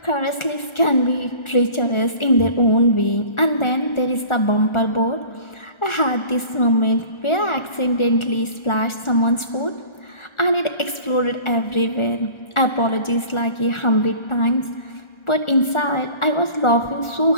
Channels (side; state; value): right; late; 1.4 ms